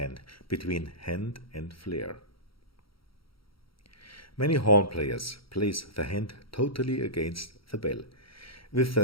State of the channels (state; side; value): late; right; 0.75 ms